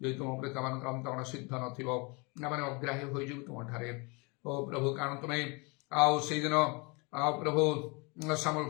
यदि तुम प्रति आमान अंतरण सिद्ध नथिबो आमान अग्राह्य हो जीव तुम ठारे ओ प्रभु कारण तुम्हें आओ से दिन आओ प्रभु सामल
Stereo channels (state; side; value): quieter; right; 29.8 dB